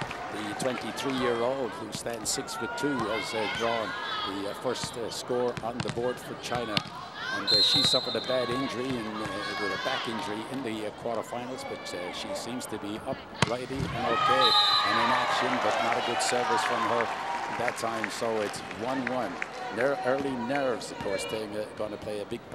The 23-year-old who stands 6'2" has drawn the first score on the board for China. And she suffered a bad injury with a back injury in the quarterfinals, but she seems to be uprighty and okay and in action, but not a good service from her that time. So it's 1-1. Early nerves, of course, going to play a big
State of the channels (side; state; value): both; identical; correlation 1.00